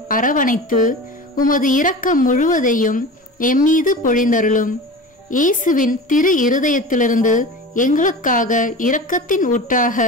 அரவணைத்து உமது இரக்கம் முழுவதையும் எம்மீது பொழிந்தருளும். இயேசுவின் திரு இருதயத்திலிருந்து எங்களுக்காக இரக்கத்தின் ஊற்றாக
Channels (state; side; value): normal; both; correlation 0.33